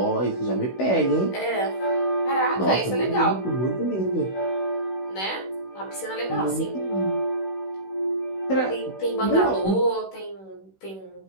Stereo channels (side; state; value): right; late; 16 ms